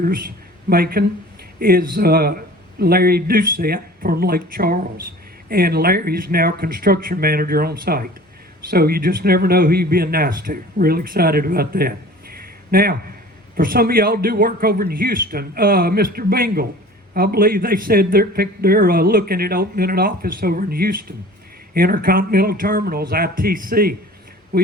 Macon, is Larry Doucette from Lake Charles. And Larry's now construction manager on site. So you just never know who you're being nice to. Real excited about that. Now, for some of y'all do work over in Houston, Mr. Bingle, I believe they said they're looking at opening an office over in Houston. Intercontinental Terminals, ITC.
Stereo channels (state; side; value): normal; both; correlation 0.44